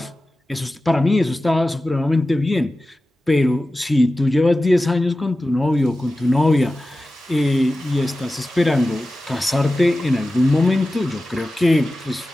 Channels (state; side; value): normal; both; correlation 0.95